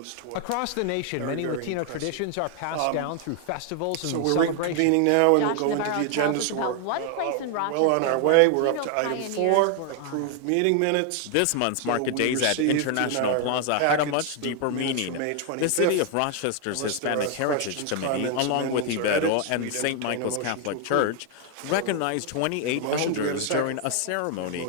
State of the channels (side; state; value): both; different; correlation 0.01